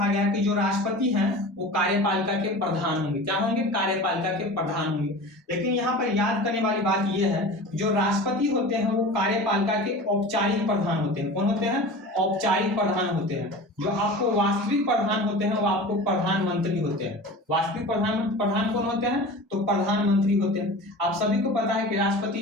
गया कि जो राष्ट्रपति हैं वो कार्यपालिका के प्रधान होंगे। क्या होंगे, कार्यपालिका के प्रधान होंगे। लेकिन यहाँ पर याद करने वाली बात ये है, जो राष्ट्रपति होते हैं वो कार्यपालिका के औपचारिक प्रधान होते हैं। कौन होते हैं, औपचारिक प्रधान होते हैं। जो आपको वास्तविक प्रधान होते हैं वो आपको प्रधानमंत्री होते हैं। वास्तविक प्रधान कौन होते हैं, तो प्रधानमंत्री होते हैं। आप सभी को पता है कि राष्ट्रपति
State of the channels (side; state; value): both; normal; correlation 0.35